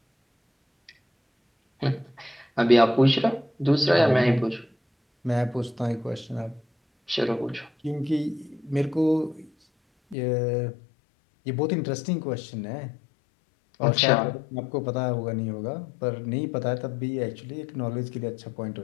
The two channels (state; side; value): drops out; right; at 10.2 s